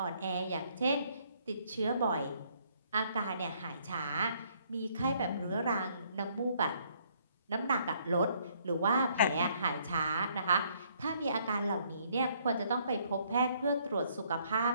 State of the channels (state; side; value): inverted; both; correlation -0.66